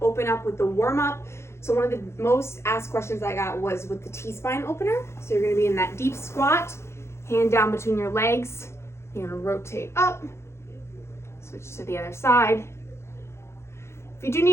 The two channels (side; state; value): right; late; 0.13 ms